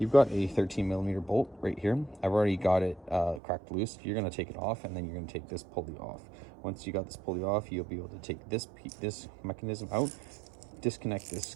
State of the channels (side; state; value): left; drops out; at 3.4 s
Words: got a 13mm bolt right here. I've already got it cracked loose. You're going to take it off, and then you're going to take this pulley off. Once you got this pulley off, you'll be able to take this mechanism out, disconnect this